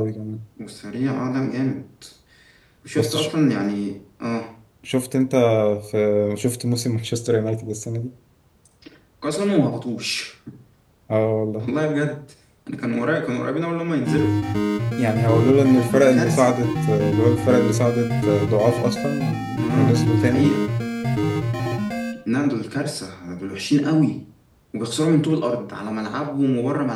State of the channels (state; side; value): identical; both; correlation 1.00